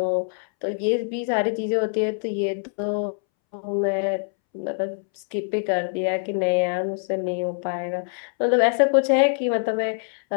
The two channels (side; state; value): right; silent; 62 dB below the other